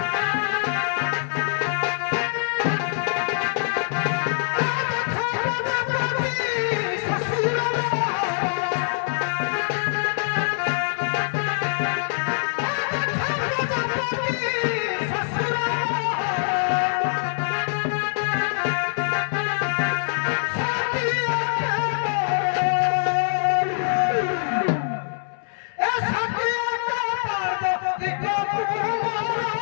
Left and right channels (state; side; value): silent; right; 63 dB below the other